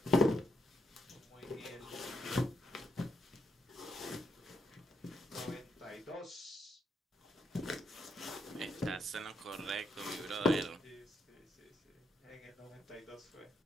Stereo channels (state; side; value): normal; both; correlation 0.78